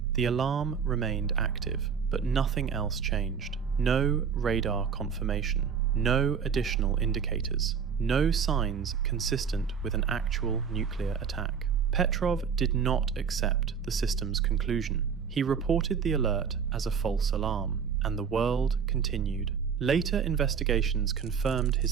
The alarm remained active, but nothing else changed. No radar confirmation, no additional indicators, no signs consistent with an actual nuclear attack. Petrov did not accept the system's conclusion. He reported the alert as a false alarm, and the world continued. Later investigations confirmed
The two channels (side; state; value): left; quieter; 6.7 dB